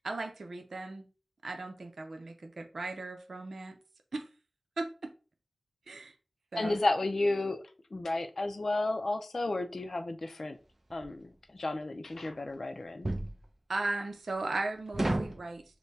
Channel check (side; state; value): both; normal; correlation 0.96